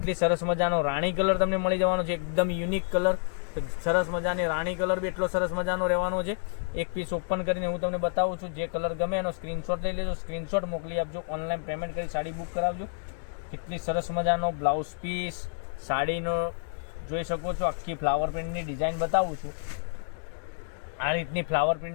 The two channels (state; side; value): silent; right; digital silence